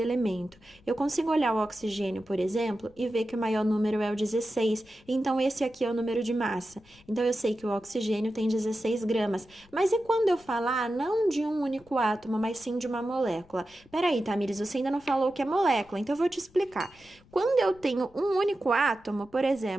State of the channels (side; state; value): left; noise; rumble, 27 dB below the sound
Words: elemento. Eu consigo olhar o oxigênio, por exemplo, e ver que o maior número é o 16, então esse aqui é o número de massa. Então, eu sei que o oxigênio tem 16 gramas. Mas e quando eu falar não de um único átomo, mas sim de uma molécula? Peraí, Tamires, você ainda não falou o que é molécula, então eu vou te explicar. Quando eu tenho um único átomo, por